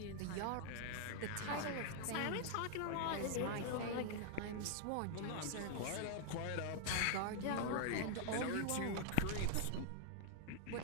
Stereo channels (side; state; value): both; different; correlation -0.01